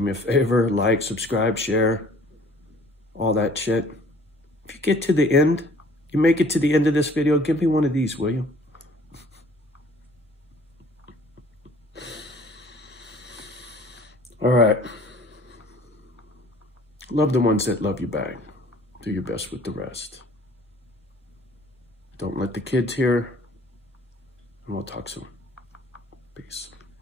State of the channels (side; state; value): both; normal; correlation 0.54